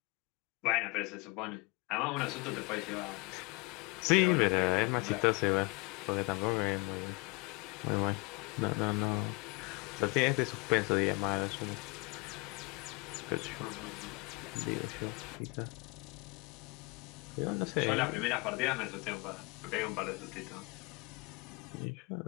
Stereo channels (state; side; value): quieter; right; 27.3 dB